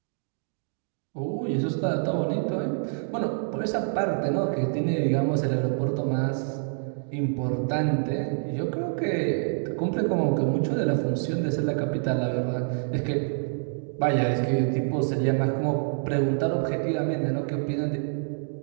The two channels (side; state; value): left; silent; digital silence